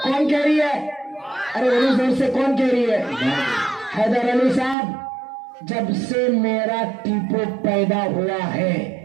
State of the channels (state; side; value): drops out; left; at 4.8 s